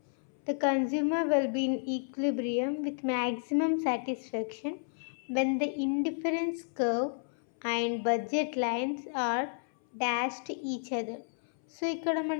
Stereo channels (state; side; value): silent; right; 57 dB below the other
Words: the consumer will be in equilibrium with maximum satisfaction when the indifference curve and budget lines are dashed each other. So ఇక్కడ